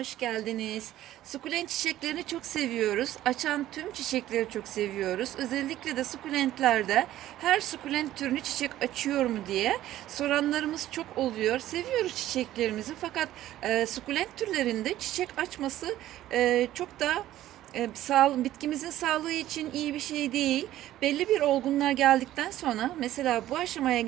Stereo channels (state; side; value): quieter; left; 13.8 dB